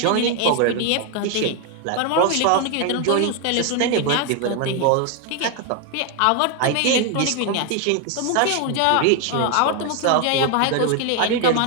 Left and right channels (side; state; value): both; different; correlation 0.01